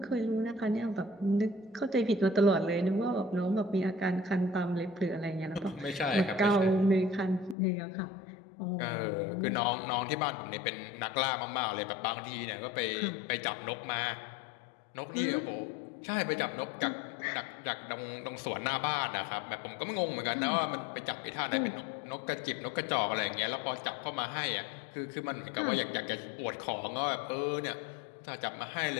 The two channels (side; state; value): right; drops out; at 7.6 s